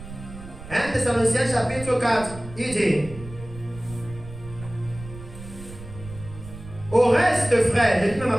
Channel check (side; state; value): right; noise; rumble, 15 dB below the sound